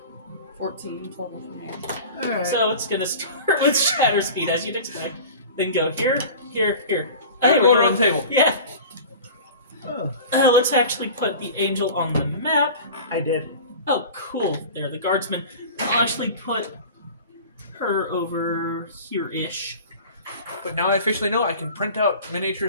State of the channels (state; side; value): inverted; both; correlation -0.37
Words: 14 total for me. All right. So it's gonna start with shatter speed as you'd expect. Then go here, here, here. Hey, we're go around the table. Yeah. Oh, Let's actually put the angel on the map. I did. Oh, cool. There, the guardsman. I'll actually put her over here-ish. But now I officially know I can print out